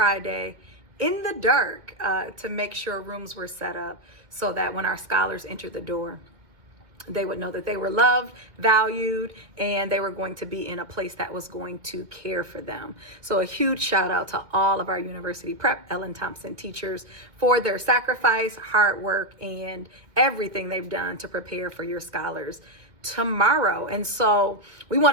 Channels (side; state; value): left; late; 2.2 ms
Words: in the dark to make sure rooms were set up so that when our scholars entered the door, they would know that they were loved, valued, and they were going to be in a place that was going to care for them. So a huge shout out to all of our University Prep Ellen Thompson teachers for their sacrifice, hard work, and everything they've done to prepare for your scholars tomorrow. And so we want